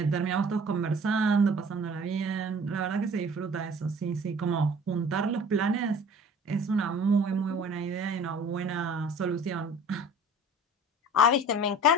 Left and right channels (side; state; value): both; normal; correlation 0.46